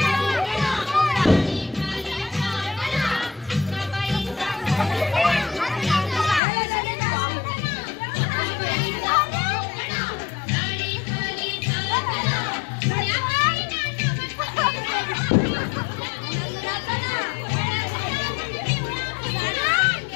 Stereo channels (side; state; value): right; drops out; at 6.4 s